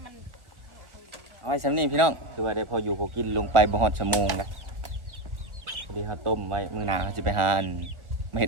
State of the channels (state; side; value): late; left; 1.2 ms